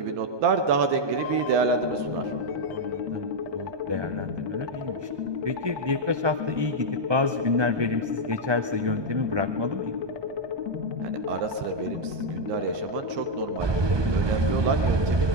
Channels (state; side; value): late; left; 1.2 ms